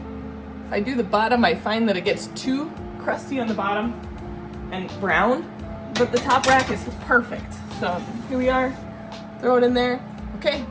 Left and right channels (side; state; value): both; identical; correlation 1.00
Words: If I do the bottom, I find that it gets too crusty on the bottom and brown, but the top rack is perfect. So here we are, throw it in there. Okay,